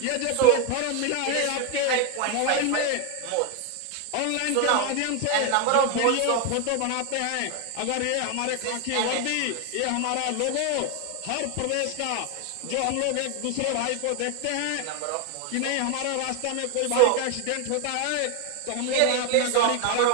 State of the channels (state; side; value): different; both; correlation 0.01